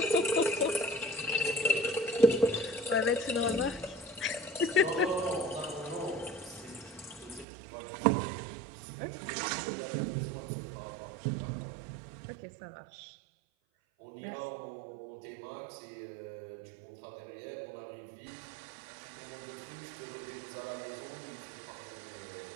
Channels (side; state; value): left; drops out; at 7.5 s